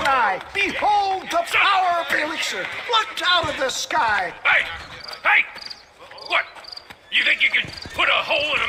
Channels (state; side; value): identical; both; correlation 1.00